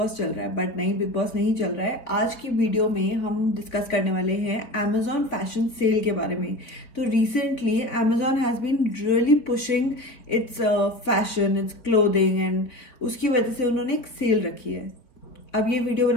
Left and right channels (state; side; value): late; right; 4.3 ms